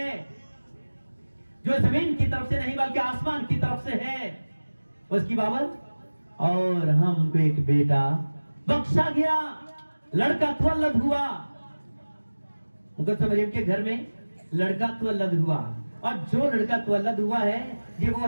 جو زمین کی طرف سے نہیں بلکہ آسمان کی طرف سے ہے، اس کی بابت اور ہم کو ایک بیٹا بخشا گیا، لڑکا تولد ہوا. مقدسہ مریم کے گھر میں لڑکا تولد ہوا، اور جو لڑکا تولد ہوا ہے یہ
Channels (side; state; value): both; inverted; correlation -1.00